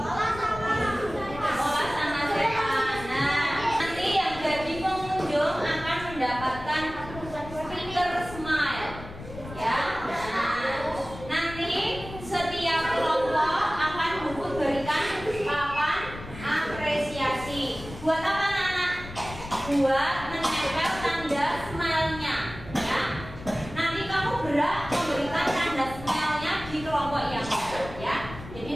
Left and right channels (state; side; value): noise; left; rumble, 13 dB below the sound